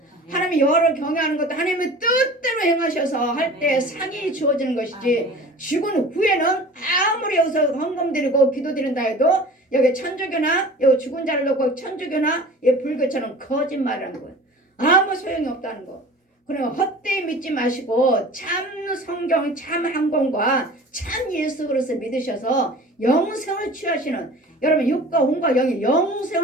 하나님의 여호와를 경외하는 것도 하나님의 뜻대로 행하셔서 할 때 상이 주어지는 것이지 죽은 후에는 아무리 여기서 헌금 드리고 기도 드린다 해도 여기 천주교나 여기 죽은 자를 놓고 천주교나 불교처럼 거짓말하는 거예요. 아무 소용이 없다는 거. 그러면 헛되이 믿지 마시고 참 성경, 참 항공과 참 예수 그리스도 믿으셔서 영생을 취하시는 여러분 육과 혼과 영의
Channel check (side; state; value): both; normal; correlation 0.41